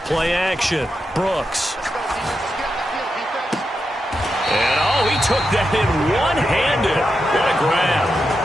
play action. Brooks. And he took that in one-handed. What a grab.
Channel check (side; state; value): both; normal; correlation 0.87